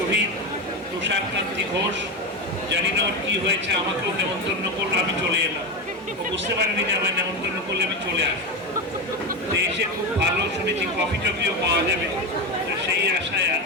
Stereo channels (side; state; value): both; normal; correlation 0.16